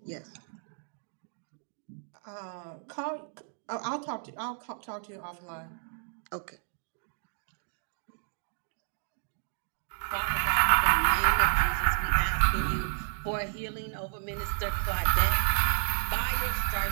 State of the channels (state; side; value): silent; left; digital silence